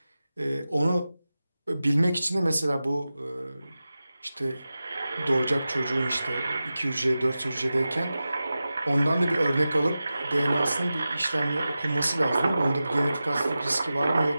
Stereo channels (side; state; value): both; inverted; correlation -0.94